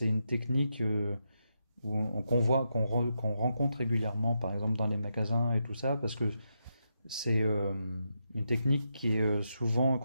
une technique qu'on rencontre régulièrement, par exemple dans les magasins et tout ça, parce que c'est une technique qui est souvent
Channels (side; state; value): both; inverted; correlation -0.84